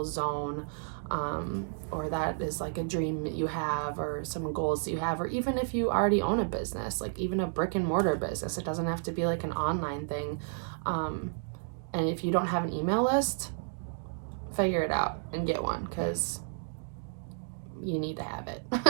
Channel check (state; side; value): silent; left; digital silence